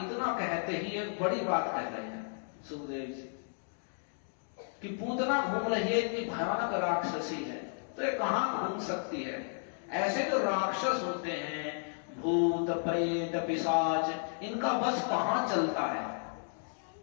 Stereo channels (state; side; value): silent; right; digital silence